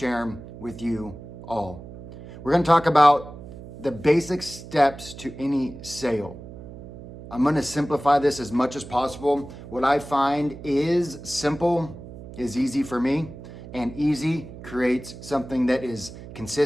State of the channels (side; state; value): right; noise; hum, 14 dB below the sound